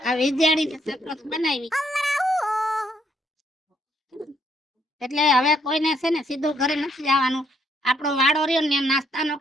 આ વિદ્યાર્થીને સરપંચ બનાવી, એટલે હવે કોઈને છે ને સીધું ઘરે નથી જવાનું. આપણો વાડો રહ્યો ને નાસ્તાનો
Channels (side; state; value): both; normal; correlation 0.71